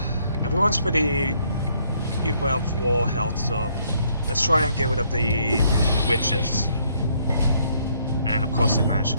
everyone's pretty well for health. So let's try and get rid of the witches. And of course, they managed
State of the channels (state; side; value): inverted; both; correlation -0.68